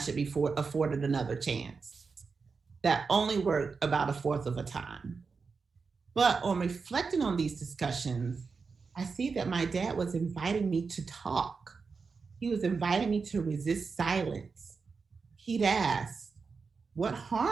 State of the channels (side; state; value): left; quieter; 4.9 dB